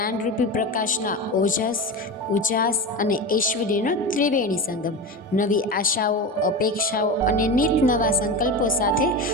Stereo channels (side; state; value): both; normal; correlation 0.24